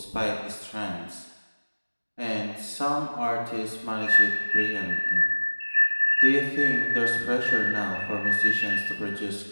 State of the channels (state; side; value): inverted; both; correlation -1.00